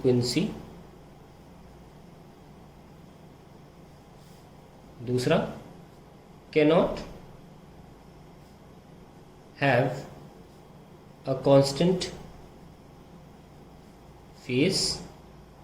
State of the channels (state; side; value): identical; both; correlation 1.00